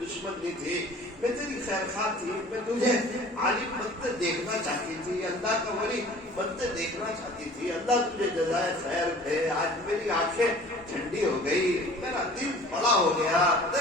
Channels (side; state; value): both; normal; correlation 0.47